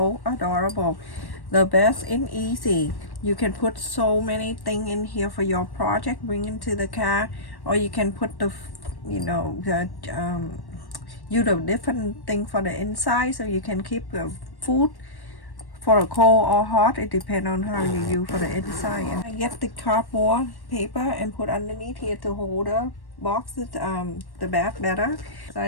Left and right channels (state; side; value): late; right; 1.1 ms